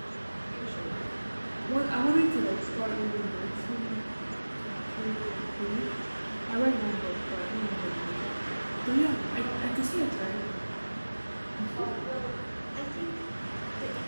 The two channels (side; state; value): both; inverted; correlation -1.00